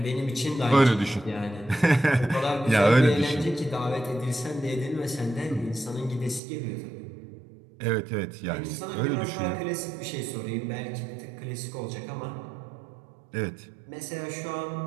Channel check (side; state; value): left; drops out; at 6.4 s